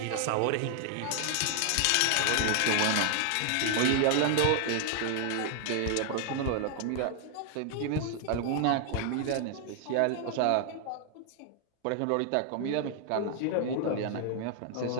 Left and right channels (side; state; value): both; different; correlation 0.00